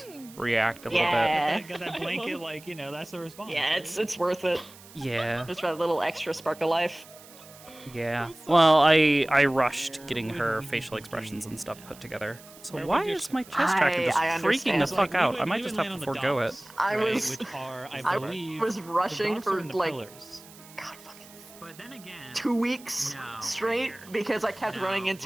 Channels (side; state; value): right; noise; hiss, 21 dB below the sound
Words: react a little Yeah. bit. Got that blanket, like, you know, that's the response. Yeah, it's worth it. Yeah. Just for that little extra spark of life. Yeah. Well, I rushed getting her facial expressions and stuff put together. So why is my chest tracker just I freaking the understand. fuck out? I might just have to forego it. I right, was, which are, I I believe, was the rushing docks are for in the like pillars. But then again, 2 weeks straight because I kept running